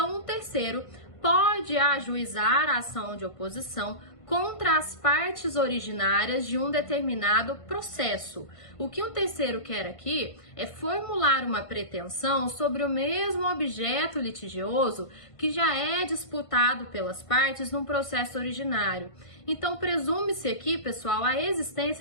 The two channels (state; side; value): late; right; 1.5 ms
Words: um terceiro pode ajuizar a ação de oposição contra as partes originárias de um determinado processo. O que um terceiro quer aqui é formular uma pretensão sobre o mesmo objeto litigioso que já é disputado pelas partes num processo originário. Então, presume-se aqui, pessoal, a